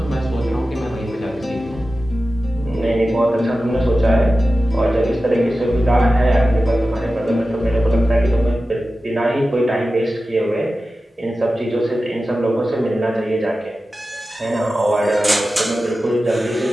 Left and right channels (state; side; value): normal; both; correlation 0.94